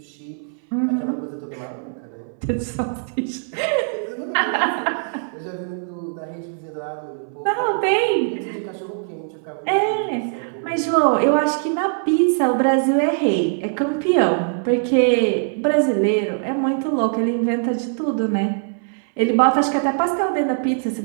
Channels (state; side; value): silent; left; 65 dB below the other